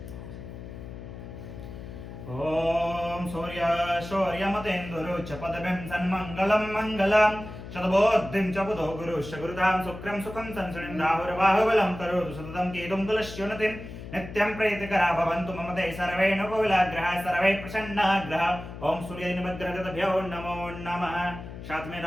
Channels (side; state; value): left; noise; hum, 11 dB below the sound